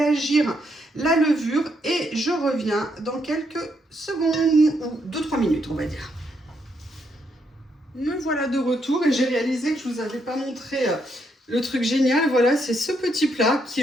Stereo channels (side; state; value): both; normal; correlation 0.76